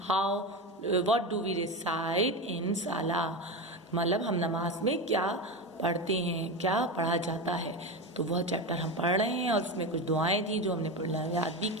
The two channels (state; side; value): normal; both; correlation 0.20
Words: व्हाट डू वी रिसाइट इन साला, मतलब हम नमाज में क्या पढ़ते हैं, क्या पढ़ा जाता है। तो वह चैप्टर हम पढ़ रहे हैं और उसमें कुछ दुआएं थी जो हमने पढ़ना याद भी